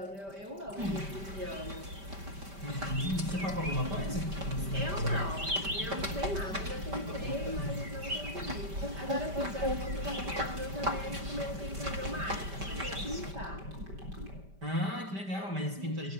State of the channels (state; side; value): late; left; 5.1 ms